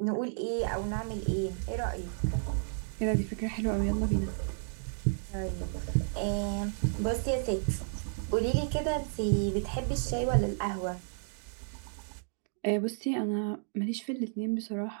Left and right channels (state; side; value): silent; left; digital silence